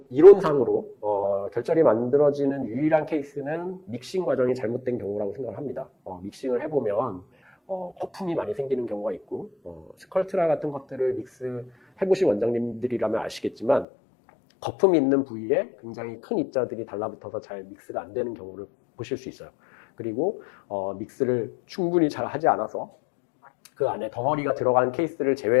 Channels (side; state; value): right; drops out; at 13.9 s